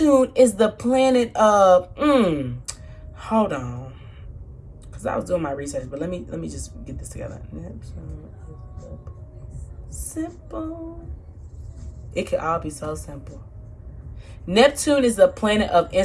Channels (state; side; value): identical; both; correlation 1.00